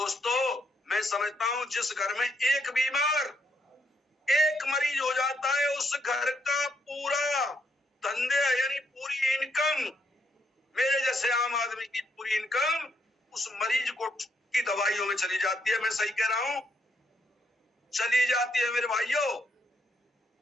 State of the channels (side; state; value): both; normal; correlation 0.75